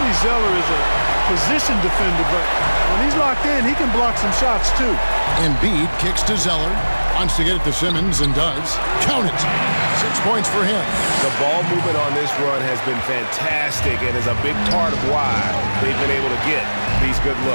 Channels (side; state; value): both; inverted; correlation -1.00